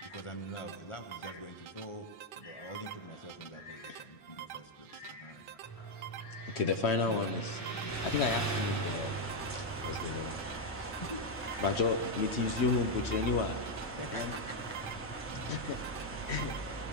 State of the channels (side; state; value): both; normal; correlation 0.02